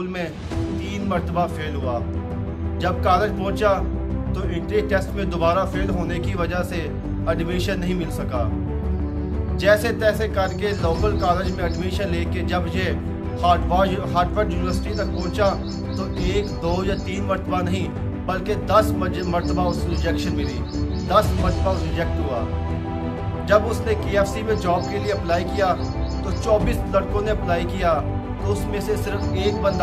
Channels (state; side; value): identical; both; correlation 1.00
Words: میں 3 مرتبہ فیل ہوا، جب کالج پہنچا تو انٹری ٹیسٹ میں دوبارہ فیل ہونے کی وجہ سے ایڈمیشن نہیں مل سکا۔ جیسے تیسے کر کے لوکل کالج میں ایڈمیشن لے کے جب یہ ہارورڈ یونیورسٹی تک پہنچا تو 1 2 یا 3 مرتبہ نہیں بلکہ 10 مرتبہ اس کو ریجیکشن ملی، 10 مرتبہ ریجیکٹ ہوا۔ جب اس نے KFC میں جاب کے لیے اپلائی کیا تو 24 لڑکوں نے اپلائی کیا، تو اس میں سے صرف 1